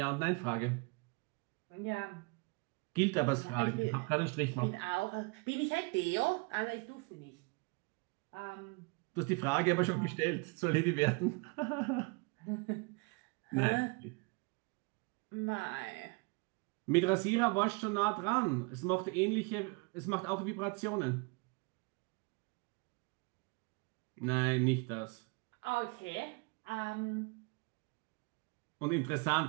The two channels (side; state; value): left; quieter; 30.5 dB